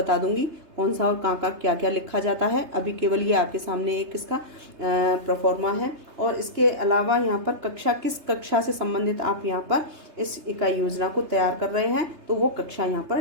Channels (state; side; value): late; left; 3.3 ms